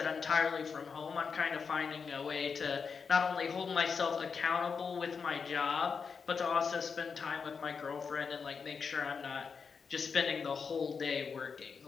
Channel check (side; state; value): right; quieter; 5.7 dB